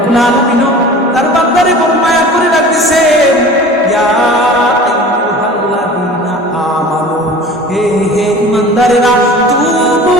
আলামিন তার বান্দারে বড় মায়া করে রাখতেছেন, ইয়া আইয়ুহাল্লাযীনা আমানু, হে হে ঈমানদারেরা, তুবু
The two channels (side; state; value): both; normal; correlation 0.41